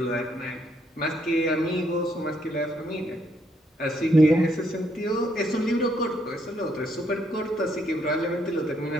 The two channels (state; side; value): normal; both; correlation 0.73